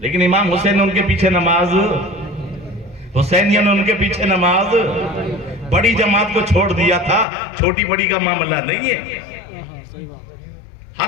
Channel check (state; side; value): drops out; right; at 7.2 s